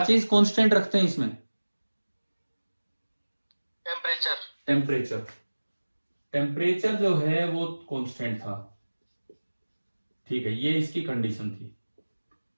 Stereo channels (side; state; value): both; inverted; correlation -1.00